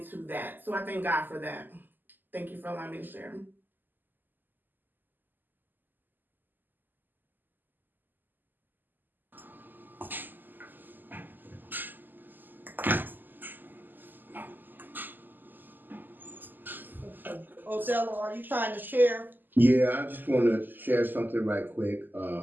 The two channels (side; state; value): left; late; 0.089 ms